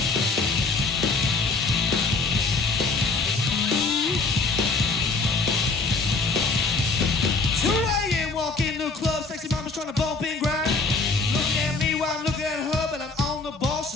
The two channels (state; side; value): quieter; right; 4.0 dB